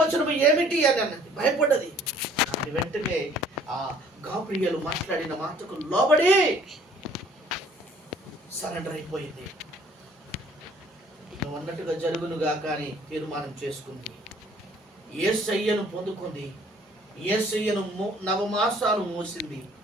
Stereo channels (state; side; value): normal; both; correlation 0.56